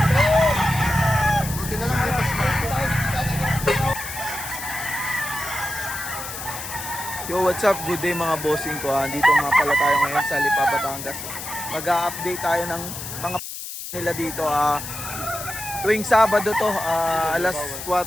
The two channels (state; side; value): noise; left; hiss, 9 dB below the sound